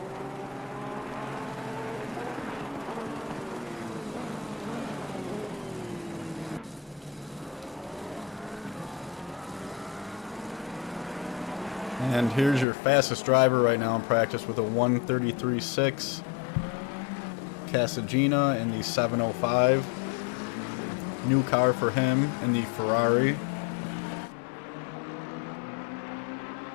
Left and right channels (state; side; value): drops out; right; at 12.7 s